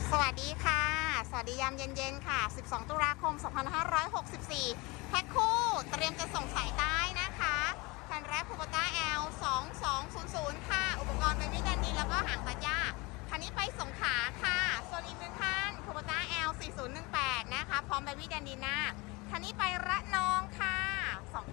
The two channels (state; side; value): quieter; right; 25.1 dB